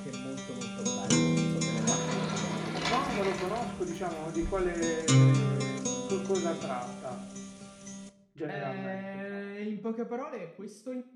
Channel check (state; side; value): identical; both; correlation 1.00